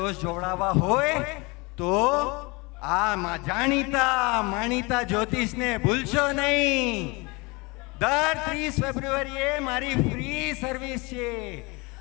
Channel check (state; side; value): quieter; right; 26.5 dB